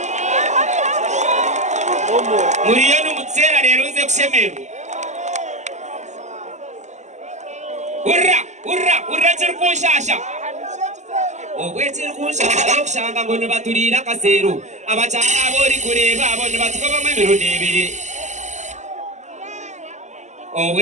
Muriyo n'umutsera rero uze kushemerwa. Urra chirkunshasha. Ogwe chirkunshasha yokushanga ngo nibaturira kasero. Abachana abori kureba abone batukoba mwemero nebiri.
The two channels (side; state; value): left; late; 0.34 ms